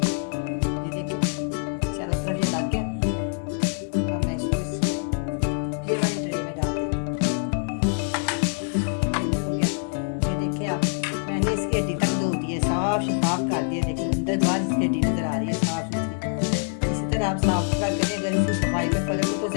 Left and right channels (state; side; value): silent; right; 60 dB below the other